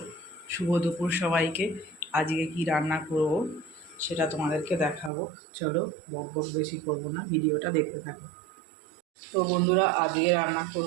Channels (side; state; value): left; drops out; at 5.1 s